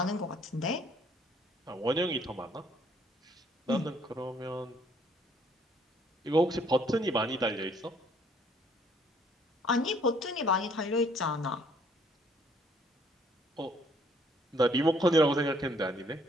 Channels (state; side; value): normal; both; correlation 0.63